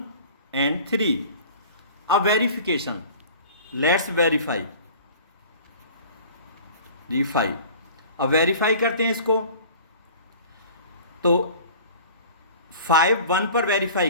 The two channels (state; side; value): inverted; both; correlation -0.44